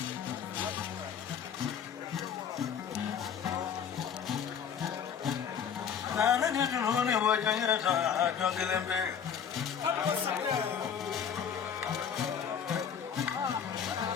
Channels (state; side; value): quieter; right; 7.7 dB